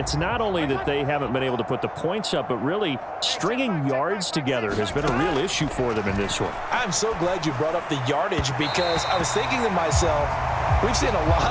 not only that they haven't been able to put the points up, but really stringing yards together has been a real issue for them in this one. I'm so glad you brought up the yardage because I was thinking to myself, we've seen a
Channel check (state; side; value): identical; both; correlation 1.00